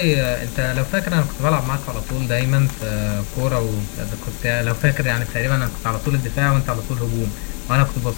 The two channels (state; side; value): quieter; right; 38.4 dB